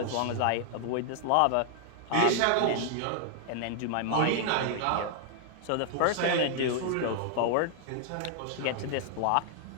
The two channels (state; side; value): different; both; correlation -0.01